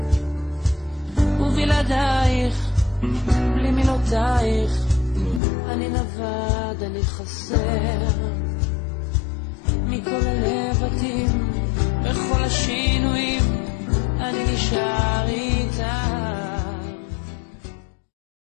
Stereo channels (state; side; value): drops out; right; at 5.4 s